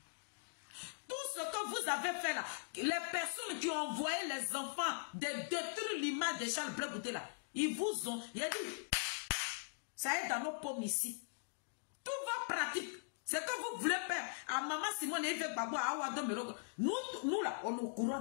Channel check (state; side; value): silent; right; digital silence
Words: Tout ce que vous avez fait là, les personnes qui ont envoyé les enfants de détruire l'image de Charles Bleu Goudé là, ils vous ont. Il a dit, ça est dans nos paumes ici. Tout va pratique. C'est que vous voulez faire à maman Simone et Gbagbo à Awado Merogo. Nous là, on est au courant